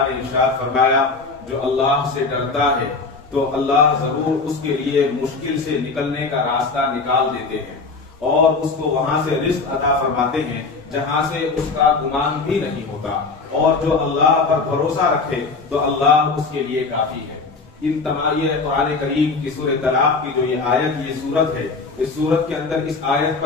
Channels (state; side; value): quieter; right; 4.1 dB